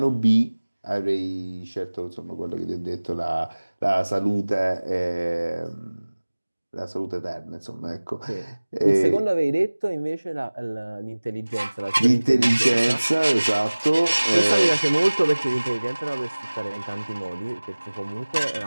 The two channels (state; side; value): inverted; both; correlation -1.00